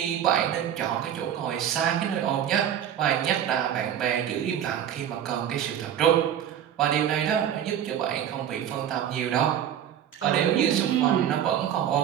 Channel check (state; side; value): quieter; left; 9.9 dB